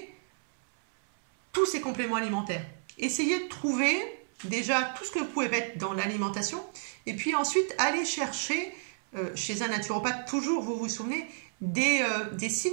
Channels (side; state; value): left; silent; 57 dB below the other